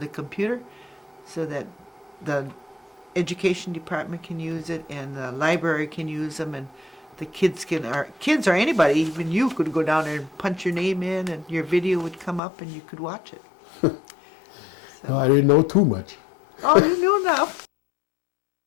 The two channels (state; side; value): drops out; right; at 12.4 s